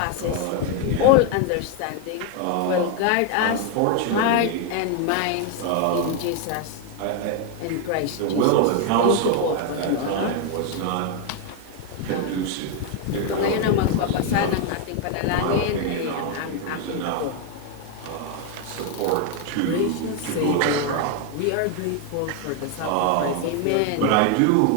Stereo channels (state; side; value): different; both; correlation 0.01